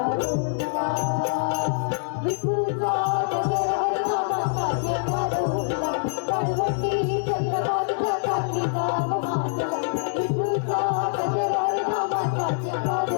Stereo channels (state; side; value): silent; right; 62 dB below the other